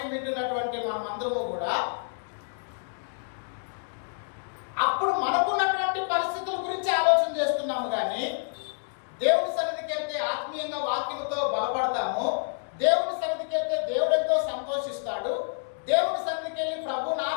వింటున్నటువంటి మనమందరము కూడా అప్పుడు మనకున్నటువంటి పరిస్థితుల గురించి ఆలోచన చేస్తున్నాము. కానీ దేవుని సన్నిధికి వెళ్తే ఆత్మీయంగా వాక్యంతో బలపడతాము. దేవుని సన్నిధికి వెళ్తే దేవుడు ఎంతో సంతోషిస్తాడు. దేవుని సన్నిధికి వెళ్ళి ప్రభువుని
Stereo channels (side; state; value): right; silent; digital silence